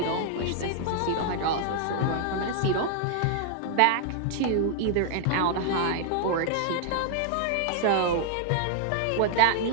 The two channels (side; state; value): both; different; correlation 0.00